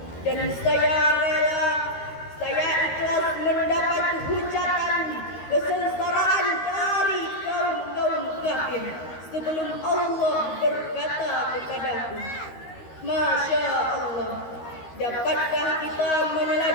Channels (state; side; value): late; right; 13 ms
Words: Dan saya rela, saya ikhlas mendapat hujatan kesengsaraan dari kaum-kaum kafir sebelum Allah berkata kepadaku, "Masya Allah, dapatkah kita